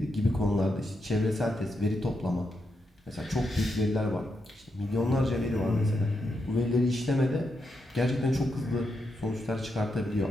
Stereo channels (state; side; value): normal; both; correlation 0.84